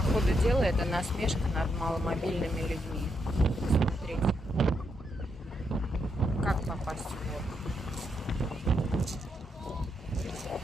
ходу дела это насмешка над маломобильными людьми. Смотрите, как попасть в город.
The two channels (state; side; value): normal; both; correlation 0.80